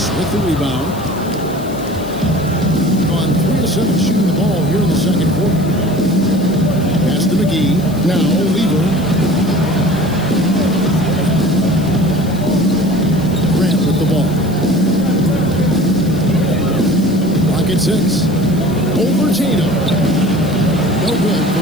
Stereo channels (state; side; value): noise; left; hiss, 20 dB below the sound